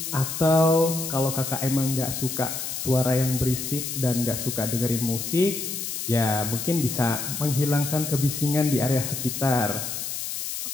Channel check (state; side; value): noise; left; hiss, 5 dB below the sound